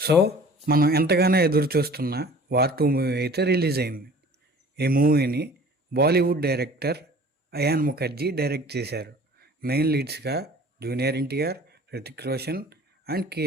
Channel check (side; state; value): both; normal; correlation 0.47